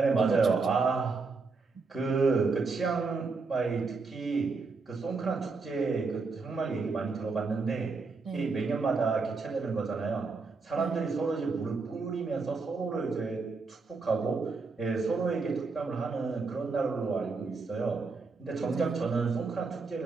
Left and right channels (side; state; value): left; quieter; 4.3 dB